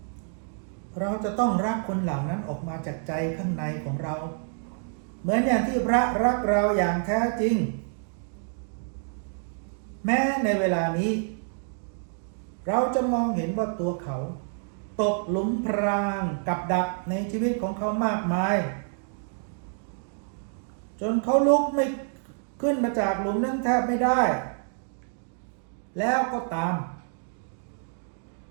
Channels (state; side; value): silent; left; 60 dB below the other